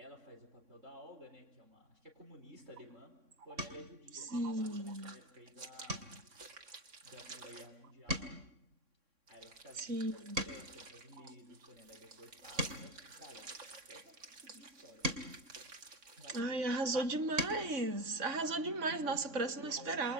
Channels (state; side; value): late; left; 3.6 ms